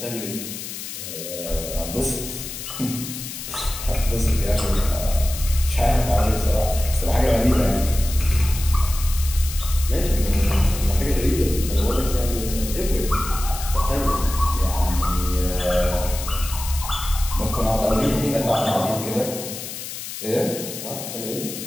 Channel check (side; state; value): left; noise; hiss, 9 dB below the sound